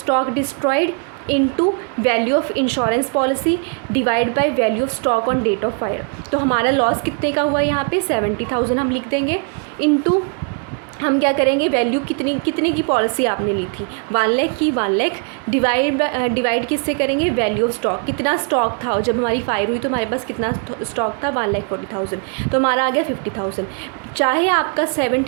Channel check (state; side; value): quieter; left; 39.3 dB